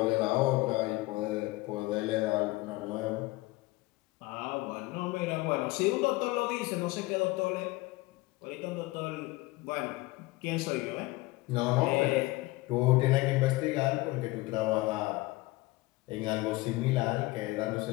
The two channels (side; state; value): right; quieter; 20.7 dB